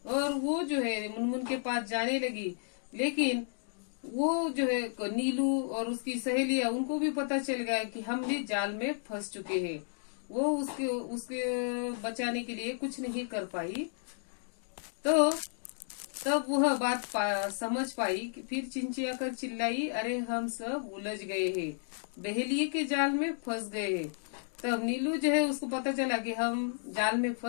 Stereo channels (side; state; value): right; silent; digital silence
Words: और वो जो है मुनमुन के पास जाने लगी। लेकिन वो जो है नीलू और उसकी सहेलियां, उनको भी पता चल गया कि हम भी जाल में फंस चुके हैं। वो उसके बचाने के लिए कुछ नहीं कर पाई। तो तब वह बात समझ पाई कि फिर चिंचिया कर चिल्लाई, अरे हम सब उलझ गए हैं, बहेलिए के जाल में फंस गए हैं। तब नीलू जो है उसको पता चला कि हम जाल में